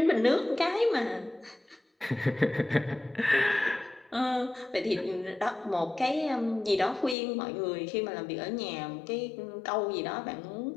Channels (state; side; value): drops out; right; at 7.2 s